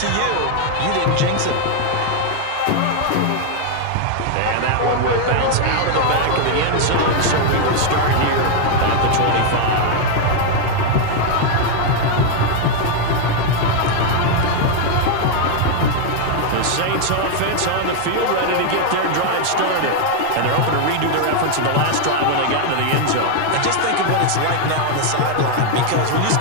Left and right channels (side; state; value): both; different; correlation 0.01